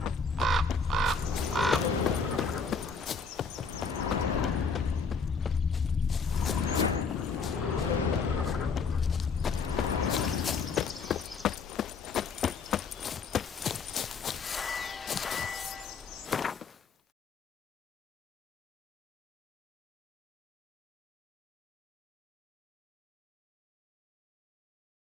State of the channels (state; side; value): quieter; right; 4.9 dB